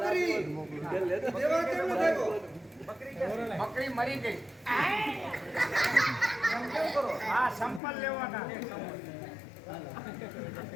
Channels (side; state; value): right; drops out; at 7.8 s